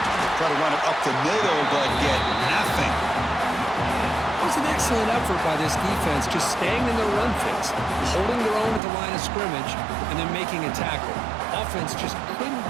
Try to run it up the middle, but get nothing. It was an excellent effort by this defense, just staying in their run fits, holding their own at the line of scrimmage, and then making a tackle. Offense just couldn't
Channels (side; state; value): left; drops out; at 8.8 s